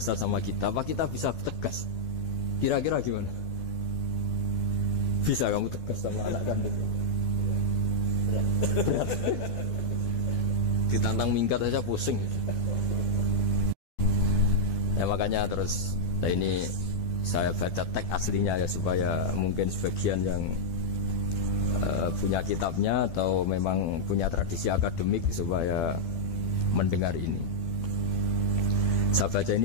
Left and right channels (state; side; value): late; right; 12 ms